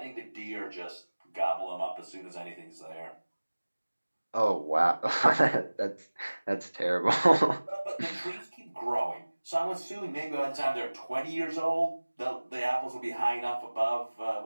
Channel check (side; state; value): both; inverted; correlation -1.00